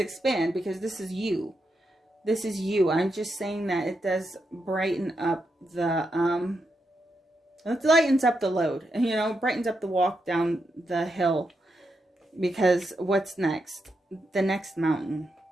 expand because this is you. This is you. I'm just saying that it does brighten up the it lightens up the load, and, you know, brightens up the walk down the hill, because what's next? The next mountain.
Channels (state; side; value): normal; both; correlation 0.84